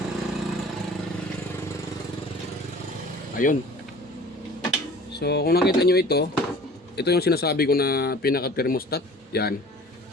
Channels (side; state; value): both; normal; correlation 0.46